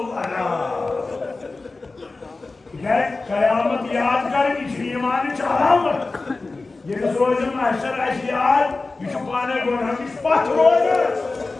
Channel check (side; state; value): right; quieter; 3.6 dB